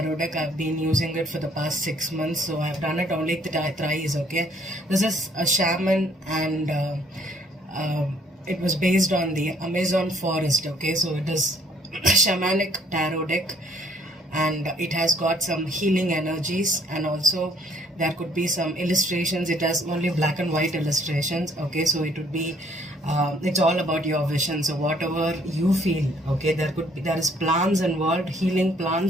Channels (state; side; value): normal; both; correlation 0.62